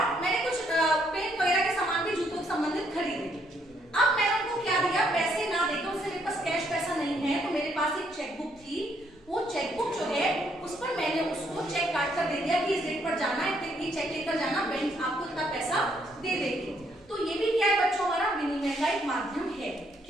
मैंने कुछ पेन वगैरह के सामान भी जूतों से संबंधित खरीदे। अब मैंने उनको क्या दिया, पैसे ना देकर, उससे मेरे पास कैश पैसा नहीं है, तो मेरे पास एक चेकबुक थी। वो चेकबुक जो है उस पर मैंने उसको चेक काट कर दे दिया कि इस डेट पर जाना है, ये चेक लेकर जाना, बैंक आपको इतना पैसा दे देगी। तो ये भी क्या है बच्चों, हमारा विनिमय का एक माध्यम है,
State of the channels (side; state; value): both; normal; correlation 0.71